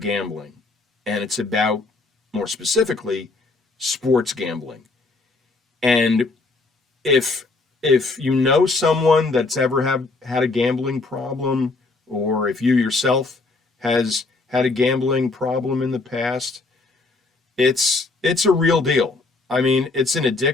And it's about, more specifically, sports gambling. And if you know someone that's ever had a gambling problem, or if you yourself has had a gambling problem in the past, it's a real deal. I mean, it's an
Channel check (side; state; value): right; quieter; 3.6 dB